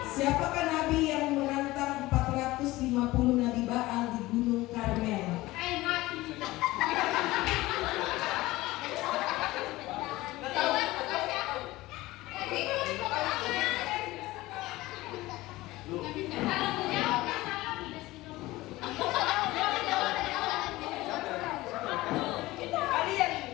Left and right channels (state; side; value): quieter; right; 18.7 dB